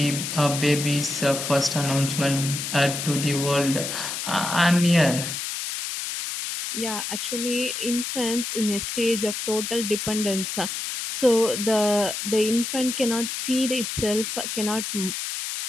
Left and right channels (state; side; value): noise; left; hiss, 4 dB below the sound